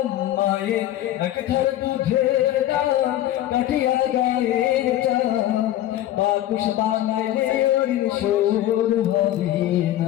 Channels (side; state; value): right; quieter; 13.3 dB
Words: মায়ের এক ধার দুধের দাম কাটিয়া গায়ের চাম, বাকুশ বানাইলে ওর সুর হবে